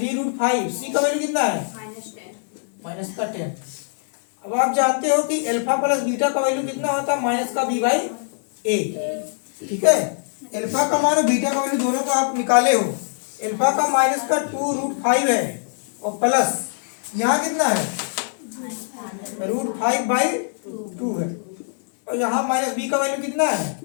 c का वैल्यू कितना है -10। अब आप जानते हो कि अल्फा प्लस बीटा का वैल्यू कितना होता है -b/a, ठीक है। अल्फा का मान और बीटा का वैल्यू दोनों को आप निकाले हो। अल्फा का -2√5 है और प्लस यहाँ कितना है √5/2 है, और यहाँ -b का वैल्यू कितना है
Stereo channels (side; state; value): right; silent; digital silence